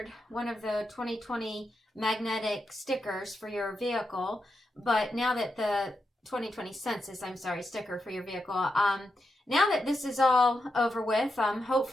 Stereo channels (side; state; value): both; normal; correlation 0.86